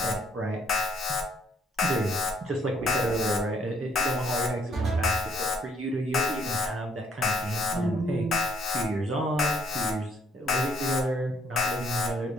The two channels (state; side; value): normal; both; correlation 0.67